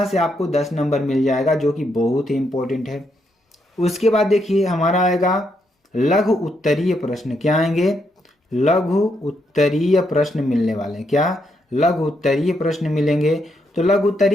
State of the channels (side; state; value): both; normal; correlation 0.78